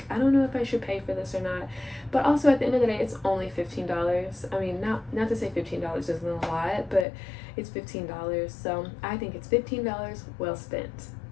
I don't know if I should pay for this or not. But also at the end of the day, it's only $15. I mean, not to say $15 isn't a lot, but it's $15. So I think it's $15 well spent.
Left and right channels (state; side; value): drops out; right; at 7.1 s